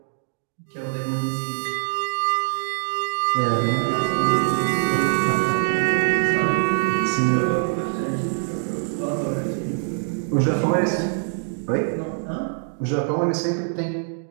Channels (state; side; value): silent; left; digital silence